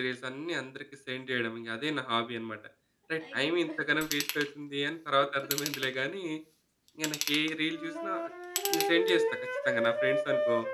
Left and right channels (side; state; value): both; identical; correlation 1.00